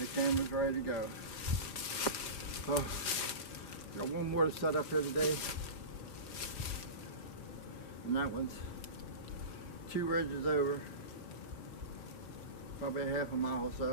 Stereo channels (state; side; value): late; right; 4.9 ms